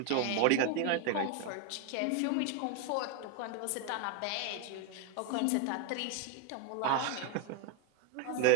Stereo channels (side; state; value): both; different; correlation 0.01